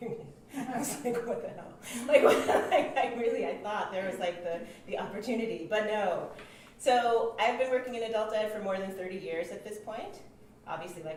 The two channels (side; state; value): both; identical; correlation 1.00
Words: union. I was like, what the hell? I thought there was like the opportunity, but no. So I've been working in adult ed for more than 30 years at this point. Obviously,